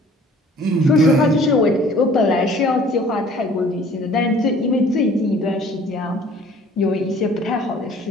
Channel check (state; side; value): normal; both; correlation 0.52